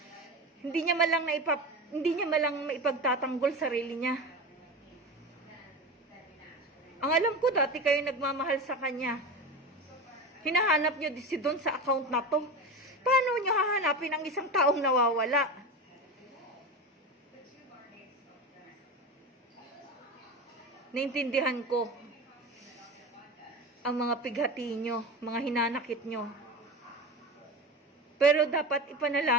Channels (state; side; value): normal; both; correlation 0.26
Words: hindi niya malang maipagtatanggol sarili niya. Ang alam ko dati kayo nagmamahal sa kanya. Hinahanap niyo si Don sa account na to. Paano niyo hahanapin ang isang taong nawawala? Naintindihan ko ang mga pighati nyo, mga hinanakit nyo. Pero dapat